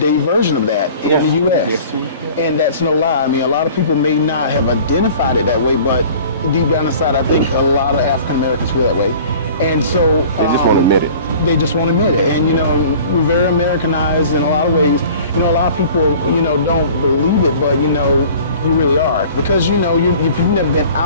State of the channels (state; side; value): inverted; both; correlation -0.46